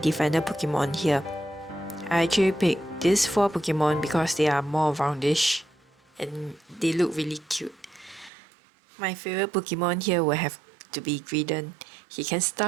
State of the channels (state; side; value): drops out; left; at 8.3 s